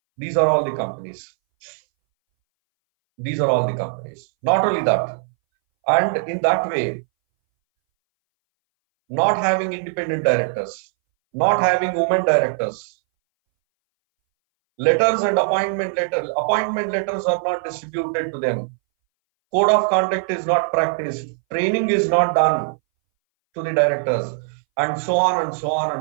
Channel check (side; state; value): left; silent; 62 dB below the other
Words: These are all the companies. These are all the companies. Not only that, and in that way, not having independent directors, not having women directors, letters and appointment letters are not distributed to them. Code of conduct is not practiced. Training is not done to the directors, and so on and so on